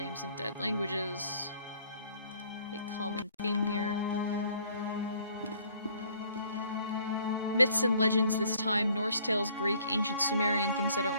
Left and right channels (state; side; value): inverted; both; correlation -0.60